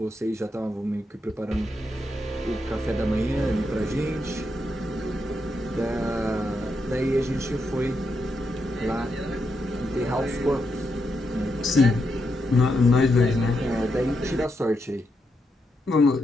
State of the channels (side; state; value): both; normal; correlation 0.82